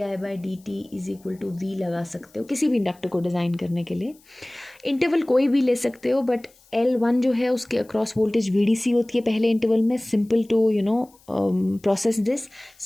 by dt is equal to V लगा सकते हो किसी भी इंडक्टर को डिज़ाइन करने के लिए. इंटरवल कोई भी ले सकते हो, बट L1 जो है उसके अक्रॉस वोल्टेज VDC होती है पहले इंटरवल में. Simple to process this.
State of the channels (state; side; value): noise; left; hiss, 30 dB below the sound